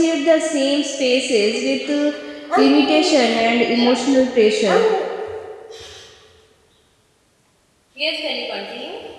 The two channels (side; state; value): both; identical; correlation 1.00